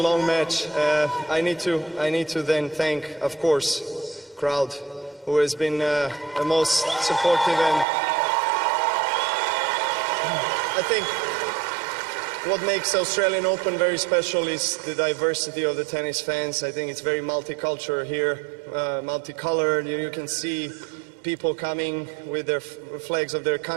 match. I need to then thank, of course, crowd, who has been the most supportive. And I think what makes Australian Open very special is the diversity of the tennis fans. I think it's very multicultural here, multicolored. You can see people coming with their flags of their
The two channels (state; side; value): drops out; left; at 7.9 s